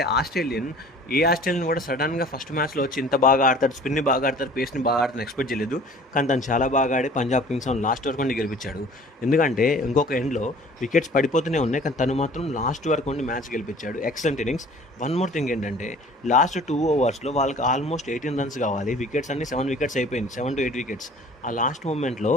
ఆస్ట్రేలియన్ కూడా సడన్గా ఫస్ట్ మ్యాచ్లో వచ్చి ఇంత బాగా ఆడతాడు, స్పిన్ని బాగా ఆడతారు, పేస్ని బాగా ఆడతారు ఎక్స్పెక్ట్ చేయలేదు. కానీ తను చాలా బాగా ఆడి పంజాబ్ కింగ్స్ లాస్ట్ వరకు ఉండి గెలిపించాడు. ఎందుకంటే ఇంకొక ఎండ్లో వికెట్స్ పడిపోతూనే ఉన్నాయి, కానీ తను మాత్రం లాస్ట్ వరకు ఉండి మ్యాచ్ గెలిపించాడు. Excellent innings. One more thing ఏంటంటే లాస్ట్ 2 ఓవర్స్లో వాళ్ళకి ఆల్మోస్ట్ 18 రన్స్ కావాలి. వికెట్స్ అన్ని 7 వికెట్స్ అయిపోయింది, 7 to 8 వికెట్స్. ఆ లాస్ట్ మూమెంట్లో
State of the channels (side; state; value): both; normal; correlation 0.48